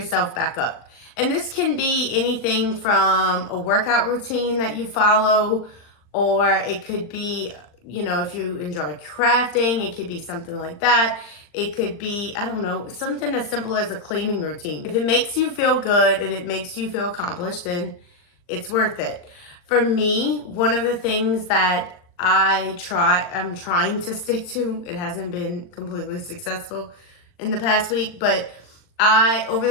back up. And this can be anything from a workout routine that you follow, or it could be, if you enjoy crafting, it could be something like that. It could be, I don't know, something as simple as a cleaning routine. If it makes you feel good and it makes you feel accomplished, then it's worth it. For me, one of the things that I'm trying to stick to, it hasn't been completely successful in the past week, but over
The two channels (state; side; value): late; right; 39 ms